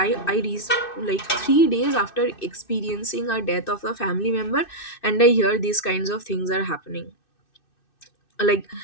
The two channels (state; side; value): late; right; 2.6 ms